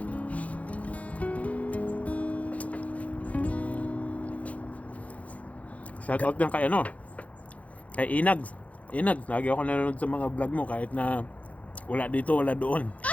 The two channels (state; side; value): late; right; 0.068 ms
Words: Shoutout lang kay ano, kay Inags. Inags, lagi ako nanonood sa mga vlog mo kahit na wala dito, wala doon.